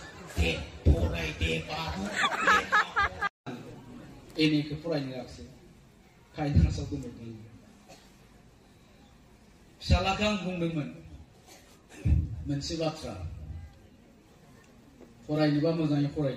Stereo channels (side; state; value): both; identical; correlation 1.00